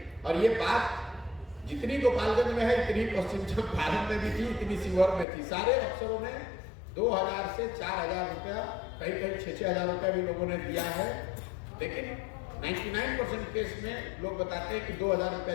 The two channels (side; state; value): right; drops out; at 5.2 s